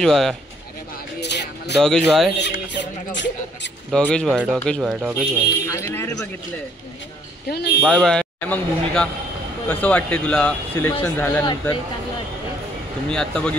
भाई, डॉगेज भाई, डॉगेज भाई, डॉगेज भाई, डॉगेज भाई, बाय बाय। मग भूमिका, कसं वाटते तुला सिलेक्शन झाल्यानंतर? तुम्ही आत्ता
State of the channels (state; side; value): normal; both; correlation 0.65